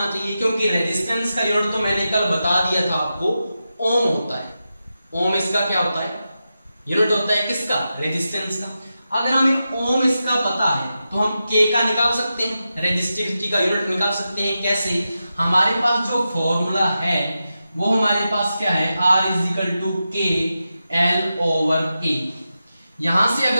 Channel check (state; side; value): inverted; both; correlation -0.90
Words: चाहिए, क्योंकि रेजिस्टेंस का यूनिट तो मैंने कल बता दिया था आपको, ओम होता है। ओम इसका क्या होता है, यूनिट होता है किसका, रेजिस्टेंस का। अगर हमें ओम इसका पता है तो हम K का निकाल सकते हैं, रेजिस्टिविटी का यूनिट निकाल सकते हैं। कैसे, हमारे पास जो फॉर्मूला है वो हमारे पास क्या है, R is equal to K L/A। यहां से